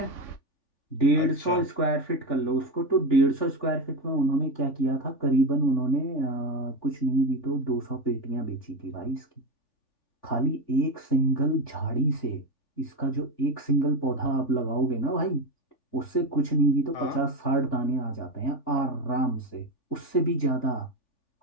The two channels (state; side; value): late; right; 3.5 ms